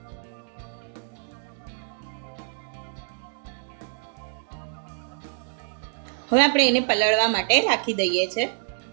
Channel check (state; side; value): silent; left; digital silence